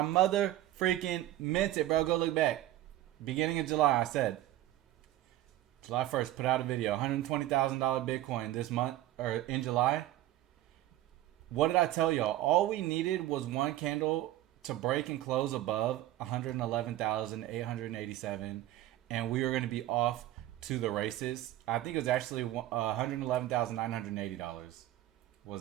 mother freaking meant it, bro. Go look back. Beginning of July, I said. July 1st, put out a video. $120,000 Bitcoin this month, or in July. What did I tell y'all? All we needed was one candle to break and close above 111,887. And we were going to be off to the races. I think it was actually $111,980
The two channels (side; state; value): left; quieter; 14.5 dB